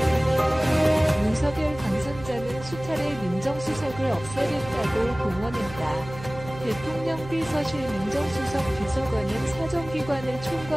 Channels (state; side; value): noise; right; hum, 14 dB below the sound